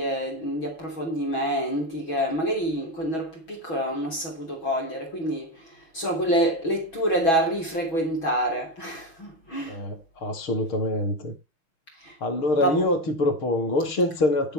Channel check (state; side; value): late; right; 6.2 ms